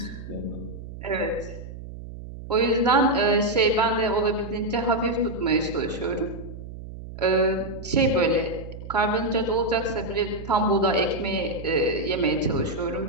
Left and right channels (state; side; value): noise; right; hum, 12 dB below the sound